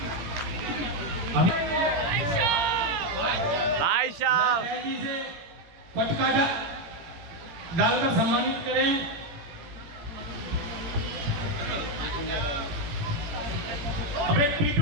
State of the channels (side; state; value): left; late; 18 ms